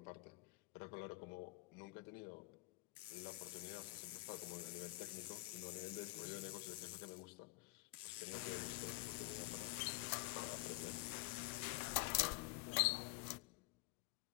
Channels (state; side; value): quieter; right; 23.4 dB